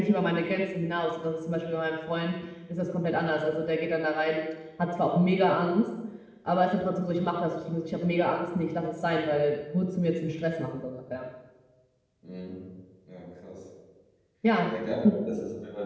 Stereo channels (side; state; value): both; identical; correlation 1.00